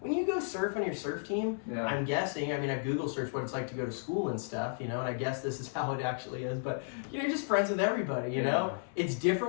you go surf on your surf team, Yeah. I'm guessing, I mean, I Google search what it's like to go to school and stuff, and I guess this is how it actually is, but, you're just friends with everybody, you know? It's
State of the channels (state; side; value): silent; right; 56 dB below the other